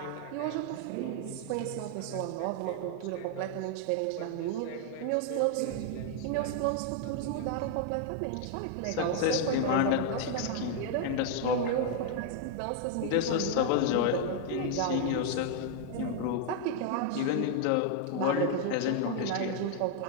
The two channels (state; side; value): different; both; correlation 0.00